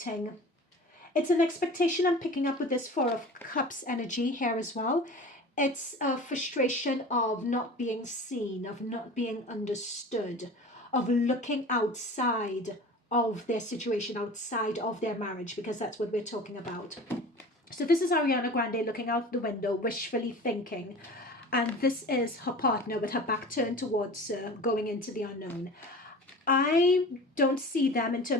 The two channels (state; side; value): normal; both; correlation 0.38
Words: It's an expectation I'm picking up with this Four of Cups energy here as well. It's a frustration of not being seen, of not being understood, of looking outside of their situation, outside of their marriage, because that's what we're talking about. So this is Ariana Grande looking out the window, wishfully thinking. And this is her partner with her back turned towards going into the unknown. I don't see them in